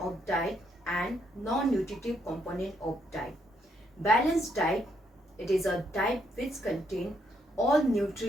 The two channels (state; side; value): normal; both; correlation 0.74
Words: diet and non-nutritive component of diet. Balanced diet, it is a diet which contains all